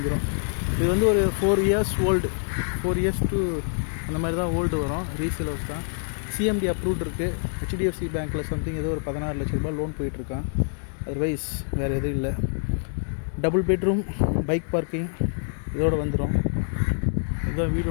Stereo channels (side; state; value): right; silent; digital silence